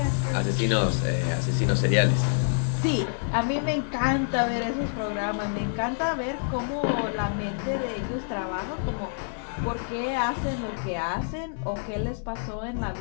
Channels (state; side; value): silent; right; 60 dB below the other